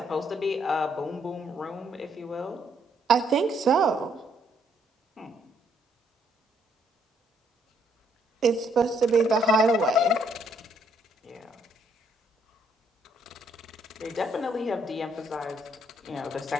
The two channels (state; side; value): normal; both; correlation 0.70